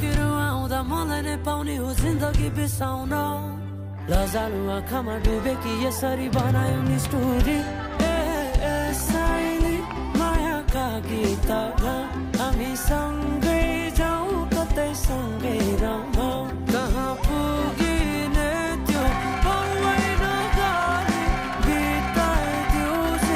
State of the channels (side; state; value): both; identical; correlation 1.00